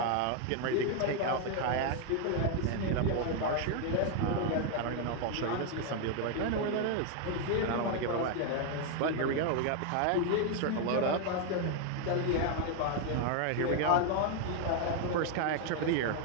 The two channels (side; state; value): both; different; correlation 0.01